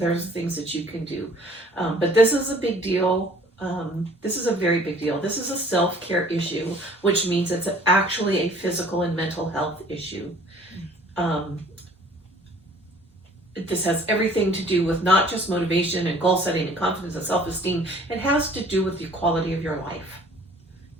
things that you can do. But this is a big deal. This is a very big deal. This is a self-care issue, which means it's actually a physical and mental health issue. This has everything to do with not just motivation and goal setting and confidence and self-esteem. It has to do with the quality of your life.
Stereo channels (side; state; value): both; normal; correlation 0.53